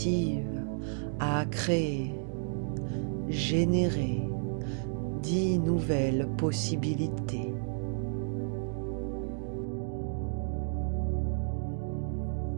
a créé, généré 10 nouvelles possibilités.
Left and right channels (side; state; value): left; silent; digital silence